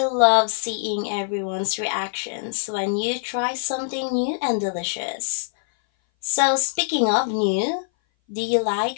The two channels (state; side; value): silent; right; 59 dB below the other